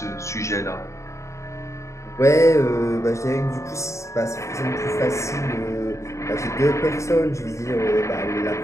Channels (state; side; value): late; right; 0.14 ms